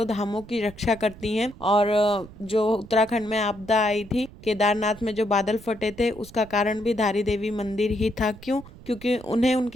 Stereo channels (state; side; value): noise; right; rumble, 19 dB below the sound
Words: धामों की रक्षा करती हैं। और जो उत्तराखंड में आपदा आई थी, केदारनाथ में जो बादल फटे थे, उसका कारण भी धारी देवी मंदिर ही था। क्यों? क्योंकि उन्हें